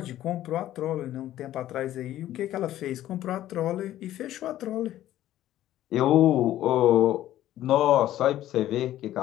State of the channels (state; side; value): quieter; right; 13.4 dB